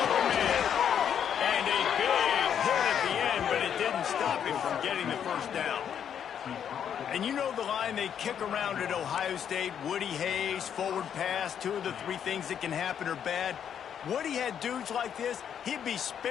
open man. And a big hit at the end, but it didn't stop him from getting the 1st down. And you know the line they kick around at Ohio State, Woody Hayes, forward pass, 2 of the 3 things that can happen are bad. Woody had dudes like this, he'd be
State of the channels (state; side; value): quieter; right; 8.6 dB